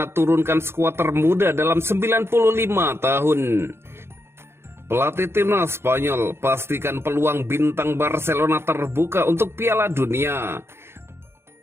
turunkan skuad termuda dalam 95 tahun. Pelatih timnas Spanyol pastikan peluang bintang Barcelona terbuka untuk Piala Dunia.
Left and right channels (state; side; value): late; left; 0.12 ms